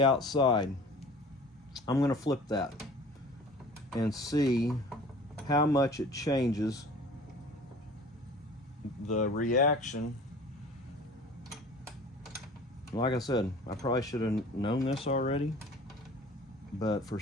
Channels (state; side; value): normal; both; correlation 0.45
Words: outside. I'm going to flip that and see how much it changes the reaction. Like I said, I probably should have known this already, but for